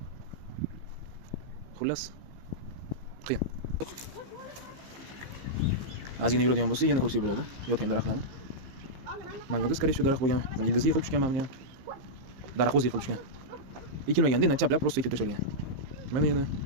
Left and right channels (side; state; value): left; late; 15 ms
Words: Xullas qiyin. Ozgina yuradigan bo'lsa, yana ko'rsak bo'ladi yotgan daraxtlarni. Mana yo'qda, скорее всего, daraxt bo'lgan. Ildizi yiqilib tushgan mana ham. Daraxt o'zi yiqilib tushgan. Ekilmaganda, chaplab просто ekib tashalgan. Mana yana